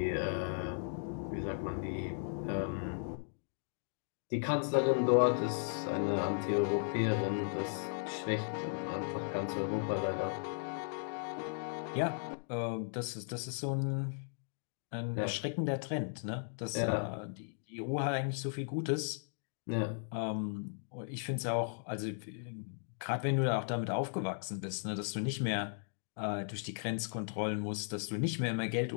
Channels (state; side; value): silent; right; digital silence